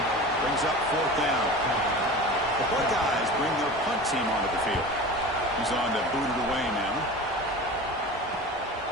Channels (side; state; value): both; normal; correlation 0.34